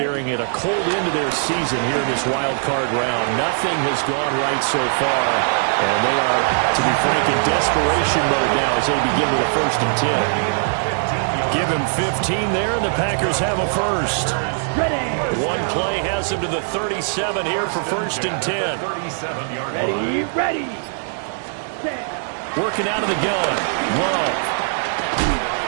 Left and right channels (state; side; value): silent; left; digital silence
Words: at a cold end of their season here in this wild card round. Nothing has gone right so far, and they are, to be frank, in desperation mode now as they begin with a 1st and 10. Give him 15 there, and the Packers have a first. Ready. One play has them to the 37 here for 1st and 10. Ready, ready. Set. Working out of the gun. Love.